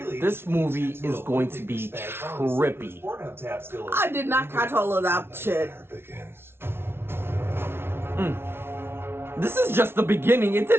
This movie is going to be trippy. I did not catch all of that shit. There begins. This is just the beginning. It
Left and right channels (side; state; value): left; late; 0.12 ms